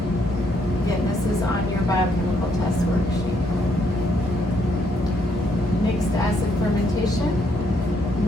Again, this is on your biochemical test worksheet. Mixed acid fermentation.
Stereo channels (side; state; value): both; normal; correlation 0.72